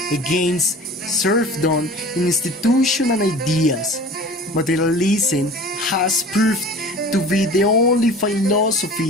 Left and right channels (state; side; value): normal; both; correlation 0.41